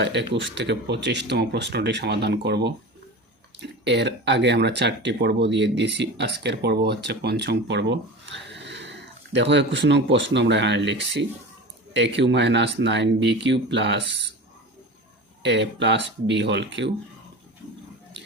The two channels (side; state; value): both; normal; correlation 0.31